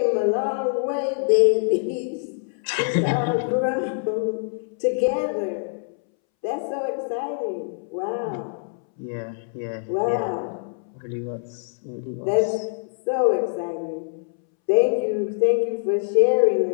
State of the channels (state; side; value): silent; right; 62 dB below the other